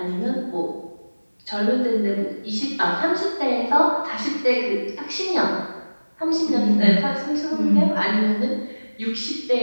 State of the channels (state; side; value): inverted; both; correlation -1.00